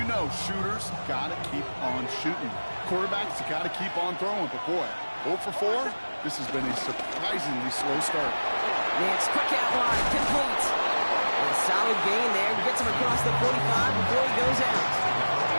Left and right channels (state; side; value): inverted; both; correlation -1.00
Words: know shooters got to keep on shooting. Quarterbacks got to keep on throwing, but boy, 0 for 4, this has been a surprisingly slow start. Nix, quick out wide, complete. And a solid gain there. Gets him across the 45 before he goes out.